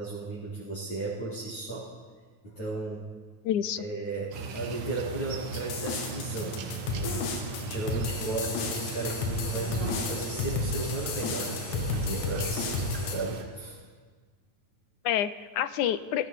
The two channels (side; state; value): right; late; 9.4 ms